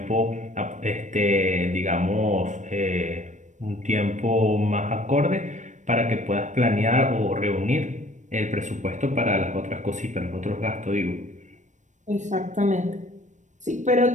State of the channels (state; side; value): late; left; 0.35 ms